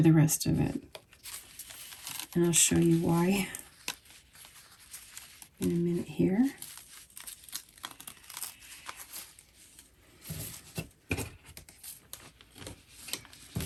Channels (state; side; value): identical; both; correlation 1.00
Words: the rest of it. And I'll show you why in a minute here.